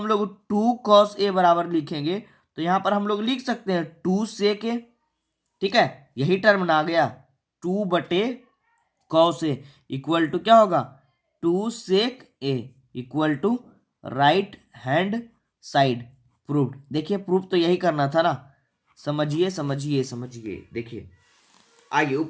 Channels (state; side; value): identical; both; correlation 1.00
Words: लोग 2 कॉस ए बराबर लिखेंगे, तो यहाँ पर हम लोग लिख सकते हैं 2 सेक ए। ठीक है, यही टर्म ना आ गया 2 बटे कॉस ए इक्वल टू क्या होगा 2 sec A equal to right hand side proved. देखिए प्रूव तो यही करना था ना, समझिए समझिए समझिए। देखिए आइए